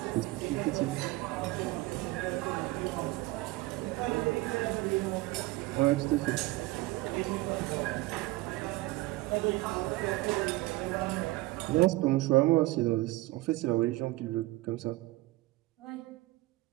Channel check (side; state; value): left; quieter; 19.7 dB